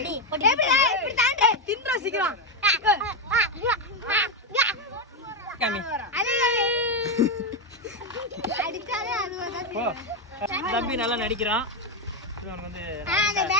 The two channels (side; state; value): both; normal; correlation 0.07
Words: தம்பி நல்லா நடிக்கிறான்.